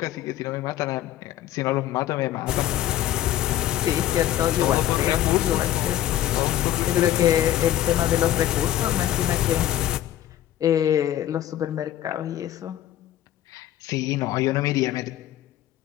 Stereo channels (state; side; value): quieter; right; 12.5 dB